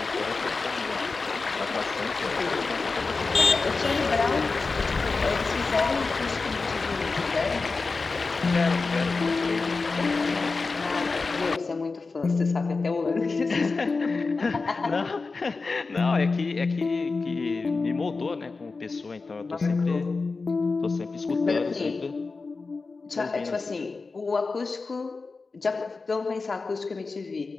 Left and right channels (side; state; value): right; quieter; 4.1 dB